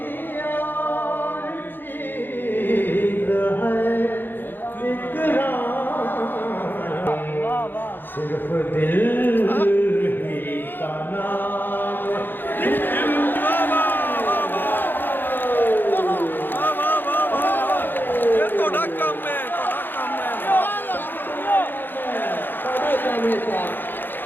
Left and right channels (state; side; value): late; right; 0.095 ms